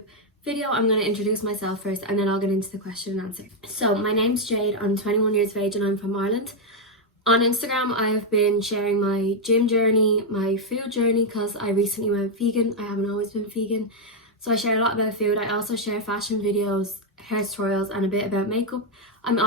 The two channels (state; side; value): normal; both; correlation 0.00